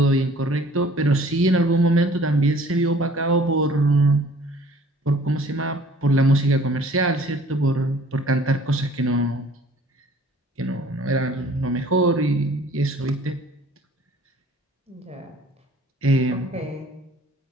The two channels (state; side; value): normal; both; correlation 0.52